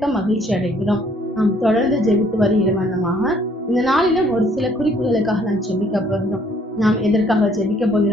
மகிழ்ச்சி அடைகிறோம். நாம் தொடர்ந்து ஜெபித்து வருகிற வண்ணமாக இந்த நாளிலும் ஒரு சில குறிப்புகளுக்காக நாம் ஜெபிக்க போகிறோம். நாம் எதற்காக ஜெபிக்க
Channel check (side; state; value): both; normal; correlation 0.62